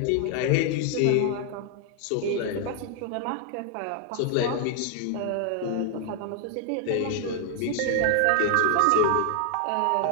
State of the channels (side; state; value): both; different; correlation 0.00